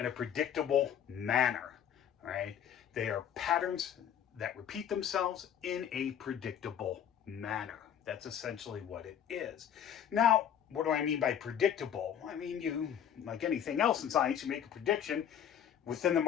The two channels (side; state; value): right; quieter; 9.3 dB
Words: a predictable manner. All right? They are patterns that repeat themselves in a predictable manner. That's essentially what it is. Now, what do I mean by predictable? I mean, you, like anything else in science, you make a prediction within the